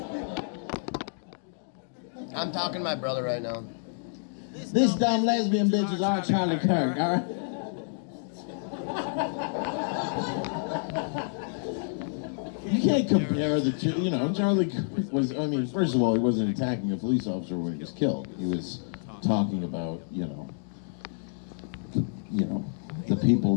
I'm talking to my brother right now. This dumb lesbian bitch is our Charlie Kirk, all right? You can't compare the two, you know, Charlie Kirk was, I mean, first of all, he wasn't attacking a police officer when he was killed. He was talking about, you know, the people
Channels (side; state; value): right; silent; digital silence